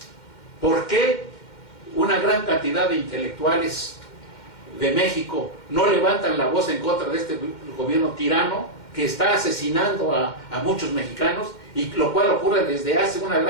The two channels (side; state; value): right; late; 2.1 ms